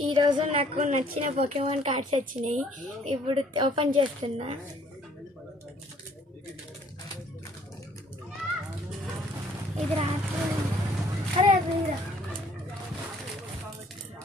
ఈరోజు నాకు నచ్చిన పోకెమాన్ కార్డ్స్ వచ్చినాయి. ఇప్పుడు ఓపెన్ చేస్తున్నా. ఇది రాత్రి అరే అది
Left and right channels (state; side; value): normal; both; correlation 0.60